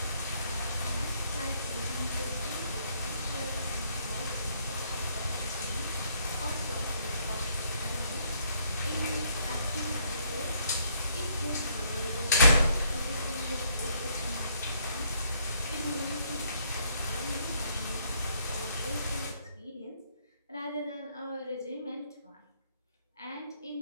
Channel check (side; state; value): both; inverted; correlation -0.69